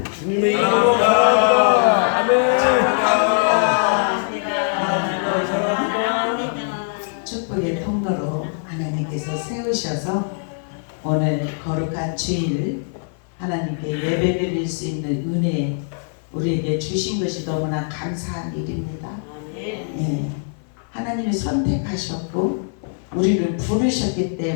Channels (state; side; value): silent; right; 56 dB below the other